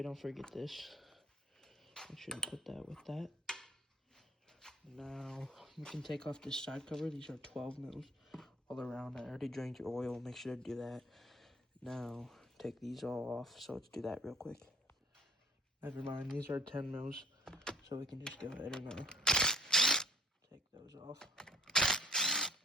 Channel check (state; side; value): normal; both; correlation 0.52